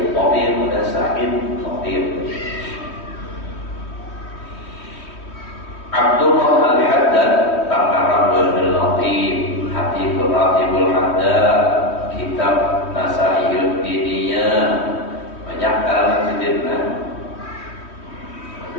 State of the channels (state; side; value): late; right; 3.1 ms